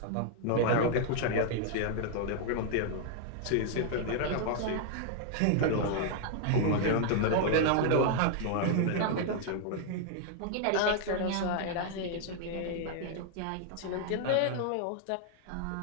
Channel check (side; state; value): both; different; correlation 0.00